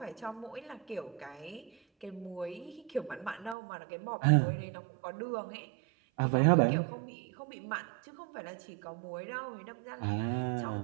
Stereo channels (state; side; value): drops out; left; at 3.6 s